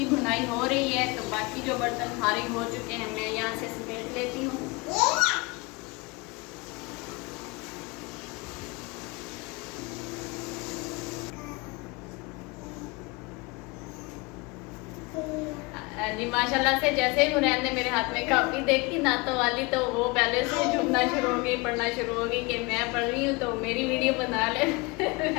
भुनाई हो रही है तो बाकी जो बर्तन फारिग हो चुके हैं मैं यहाँ से समेट लेती हूँ। जी माशाल्लाह से जैसे ही हुरैन ने मेरे हाथ में कापी देखी नातों वाली तो वो पहले से झूमना शुरू हो गई, पढ़ना शुरू हो गई कि मैं पढ़ रही हूँ तो मेरी वीडियो बना ले।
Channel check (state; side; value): quieter; right; 25.9 dB